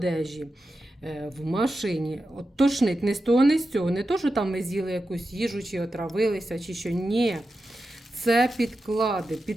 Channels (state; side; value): normal; both; correlation 0.91